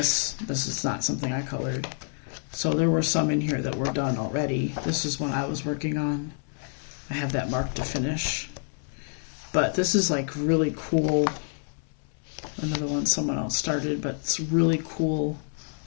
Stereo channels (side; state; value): right; silent; 60 dB below the other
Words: This is not something I colored. So there were some in here that were done already. This is one I was working on. I have that marked to finish. But this is like really cool. Another one someone else started, but it's really cool